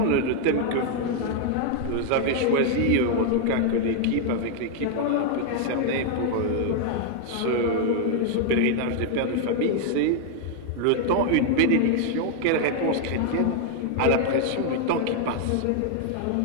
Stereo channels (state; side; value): different; both; correlation 0.00